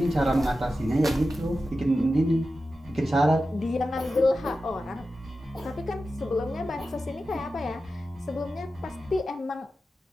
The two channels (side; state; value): both; normal; correlation 0.92